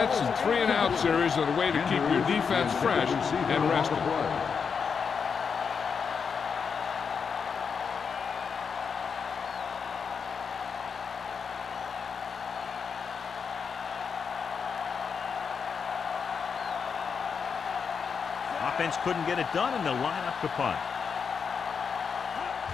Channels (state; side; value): quieter; right; 6.1 dB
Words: and 3-and-out series are the way to keep your defense fresh and rested. Offense couldn't get it done, and they'll line up to punt.